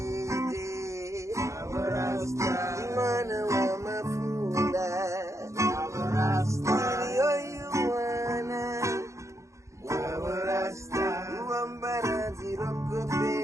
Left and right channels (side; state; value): left; late; 0.15 ms